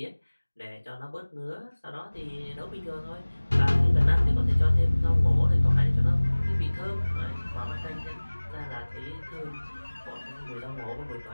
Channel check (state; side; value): inverted; both; correlation -1.00